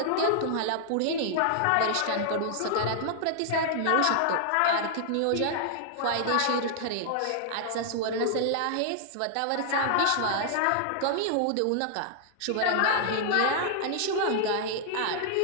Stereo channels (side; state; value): both; different; correlation -0.01